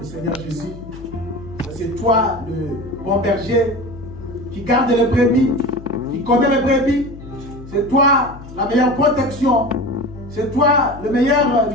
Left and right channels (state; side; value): noise; left; hum, 15 dB below the sound